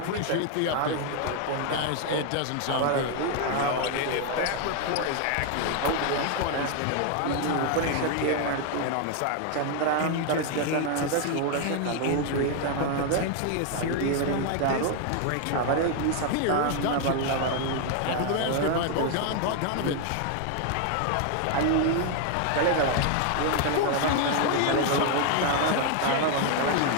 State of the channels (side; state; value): both; different; correlation 0.00